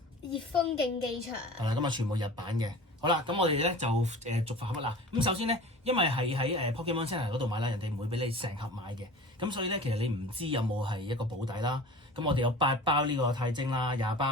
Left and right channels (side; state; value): both; normal; correlation 0.39